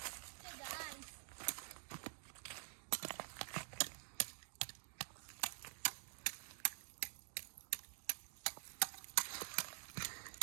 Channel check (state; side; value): silent; left; digital silence